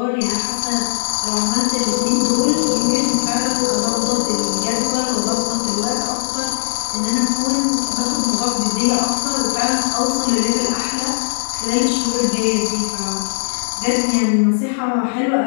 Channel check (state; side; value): silent; right; digital silence